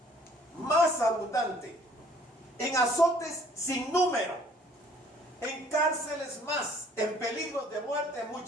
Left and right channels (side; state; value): both; normal; correlation 0.58